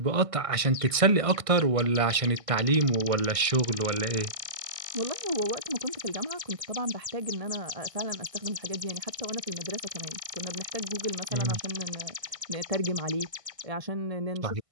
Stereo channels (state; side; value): late; left; 1.6 ms